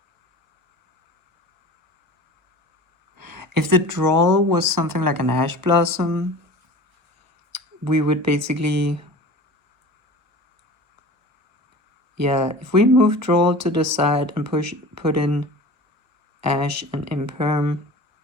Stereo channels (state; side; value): late; left; 1.3 ms